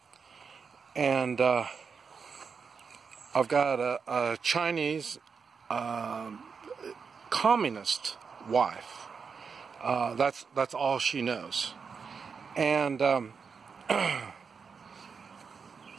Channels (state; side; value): quieter; left; 5.7 dB